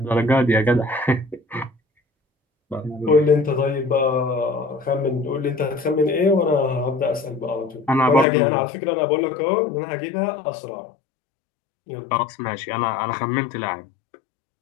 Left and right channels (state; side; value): drops out; right; at 8.2 s